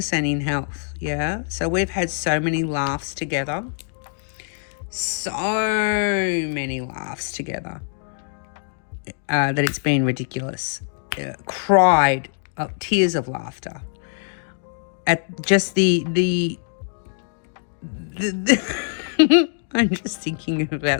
and in health, yeah? So we've had so many laughs together. So many laughs together that it's been ridiculous. Cried, tears of laughter at just the I'm just thinking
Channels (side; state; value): right; silent; 63 dB below the other